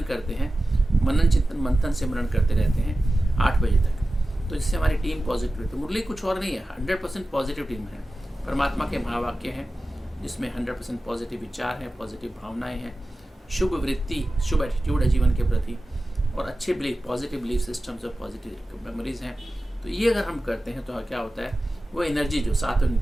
करते हैं, मनन चिंतन मंथन सिमरन करते रहते हैं 8 बजे तक, तो जिससे हमारी टीम पॉजिटिव है। तो मुरली कुछ और नहीं है, 100% पॉजिटिव टीम है, परमात्मा के महावाक्य हैं जिसमें 100% पॉजिटिव विचार हैं, पॉजिटिव भावनाएं हैं, शुभ वृत्ति, शुभ एटीट्यूड है जीवन के प्रति, और अच्छे बिलीफ, पॉजिटिव बिलीफ सिस्टम्स और पॉजिटिव मेमोरीज हैं। तो ये अगर हम करते हैं तो क्या होता है, वो एनर्जी जो सात्विक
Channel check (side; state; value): both; normal; correlation 0.95